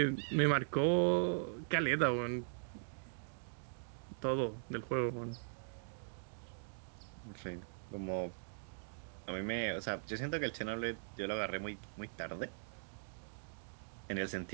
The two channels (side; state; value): left; silent; digital silence